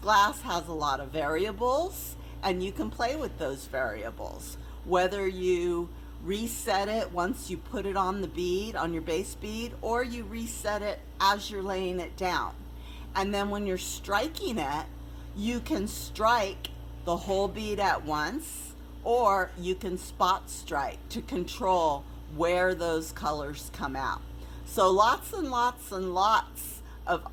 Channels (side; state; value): both; identical; correlation 1.00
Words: has a lot of variables, and you can play with those variables. Whether you reset it once you put it on the bead, on your base bead, or you reset it as you're laying it down. And then when you're striking it, you can strike the whole bead at once, or you can spot strike to control where those colors come out. So lots and lots and lots of